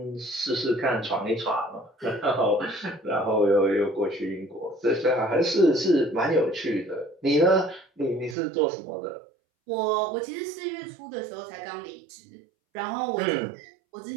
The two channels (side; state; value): left; drops out; at 8.3 s